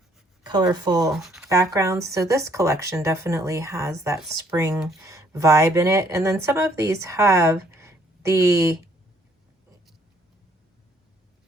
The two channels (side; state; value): both; normal; correlation 0.65